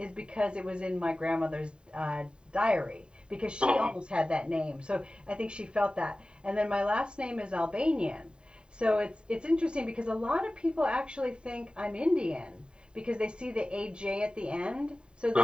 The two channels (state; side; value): late; left; 0.050 ms